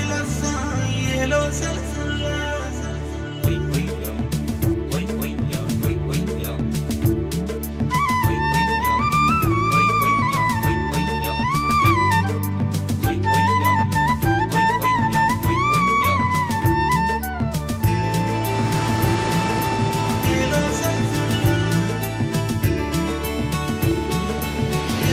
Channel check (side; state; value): both; identical; correlation 1.00